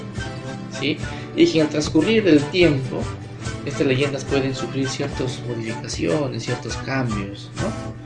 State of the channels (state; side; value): identical; both; correlation 1.00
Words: ¿sí? Y que al transcurrir del tiempo, estas leyendas pueden sufrir ciertas modificaciones, ciertos cambios,